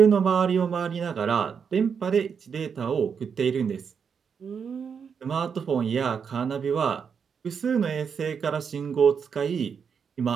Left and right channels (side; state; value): left; quieter; 6.6 dB